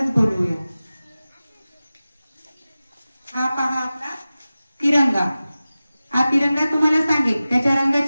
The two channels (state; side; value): inverted; both; correlation -0.96